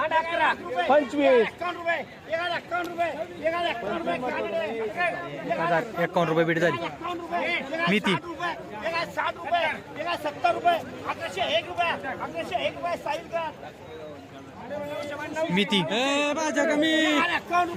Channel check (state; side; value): identical; both; correlation 1.00